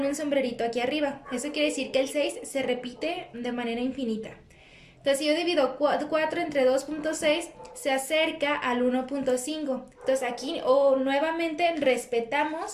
un sombrerito aquí arriba. Eso quiere decir que el 6 se repite de manera infinita. Entonces, si yo divido 4 entre 2.6, se acerca al 1.5. Entonces, aquí nuevamente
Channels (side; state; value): both; identical; correlation 1.00